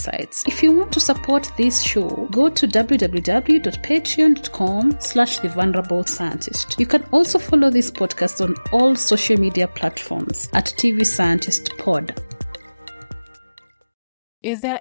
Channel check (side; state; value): both; inverted; correlation -0.99